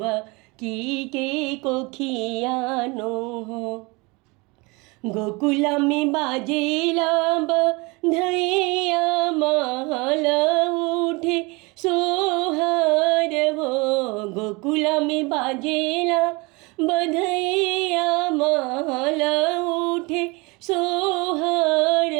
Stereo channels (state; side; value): quieter; left; 26.4 dB